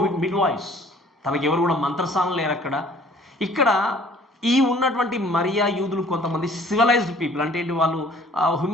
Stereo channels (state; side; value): normal; both; correlation 0.54